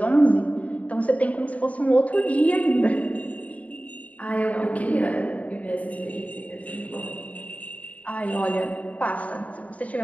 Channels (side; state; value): right; late; 0.069 ms